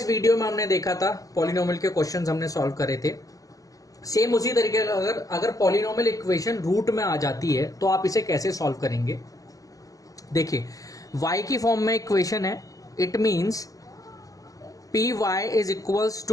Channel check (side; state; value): right; late; 0.17 ms